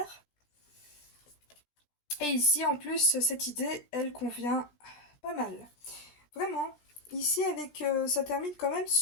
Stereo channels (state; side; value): late; right; 17 ms